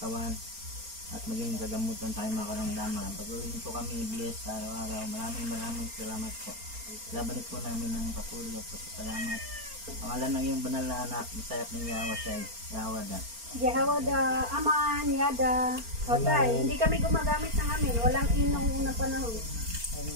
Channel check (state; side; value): late; left; 4.4 ms